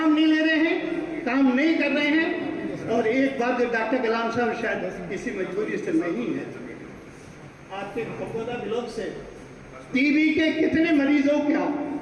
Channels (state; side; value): identical; both; correlation 1.00